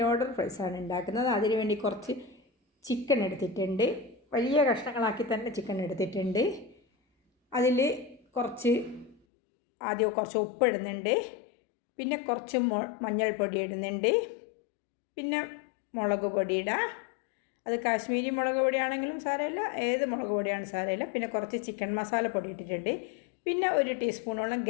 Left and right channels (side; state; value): right; drops out; at 9.2 s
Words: ലോഡർ ഫ്രൈസാണ് ഉണ്ടാക്കുന്നത്. അതിനുവേണ്ടി കുറച്ച് ചിക്കൻ എടുത്തിട്ടുണ്ട്. വലിയ കഷ്ണങ്ങളാക്കി തന്നെ ചിക്കൻ എടുത്തിട്ടുണ്ട്. അതിൽ ആദ്യം കുറച്ച് ഉപ്പ് ഇടുന്നുണ്ട്, പിന്നെ കുറച്ച് മഞ്ഞൾപ്പൊടി ഇടുന്നുണ്ട്, പിന്നെ മുളക് പൊടി ഇടാം. അത് കാശ്മീരി മുളക് പൊടിയാണെങ്കിലും സാരമില്ല, ഏത് മുളക് പൊടിയാണ് സാരമില്ല. പിന്നെ കുറച്ച് ചിക്കൻ മസാല പൊടി ഇട്ടിട്ടുണ്ട്. പിന്നെ 1 ടീസ്പൂണോളം